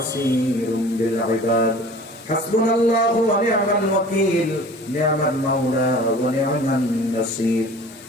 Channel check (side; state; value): both; normal; correlation 0.44